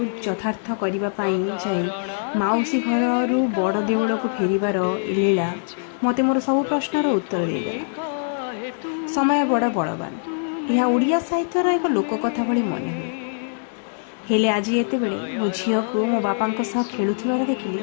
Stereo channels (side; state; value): right; silent; digital silence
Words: यथार्थ करने जाई माउसी घर बड़ देउल को फेरिबार लीला मते मोर सब प्रश्नर उत्तर देदेला। समय बड़ बलवान, यह ओडिया साहित्यर एक लोककथा भली मन हुए। हेले आज एतेबेले मो झील को मो बापा सह खेलुथिबार देखिली,